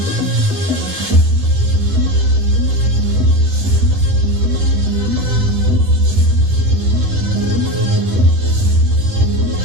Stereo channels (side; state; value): left; late; 9.8 ms